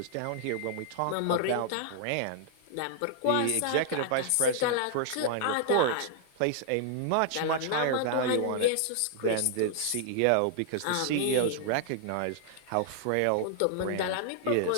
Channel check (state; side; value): different; both; correlation -0.01